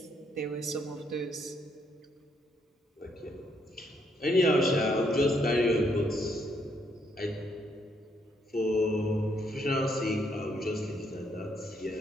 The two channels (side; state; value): both; normal; correlation 0.73